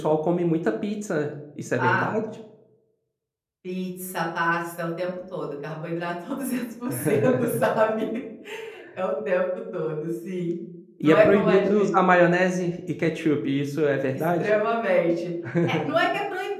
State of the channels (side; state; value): both; identical; correlation 1.00